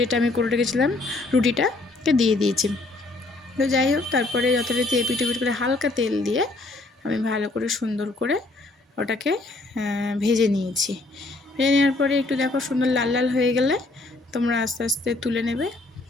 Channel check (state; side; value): quieter; right; 3.1 dB